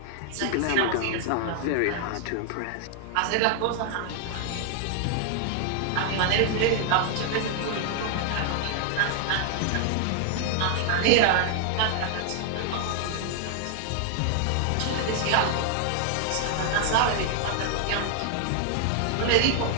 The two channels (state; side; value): different; both; correlation 0.00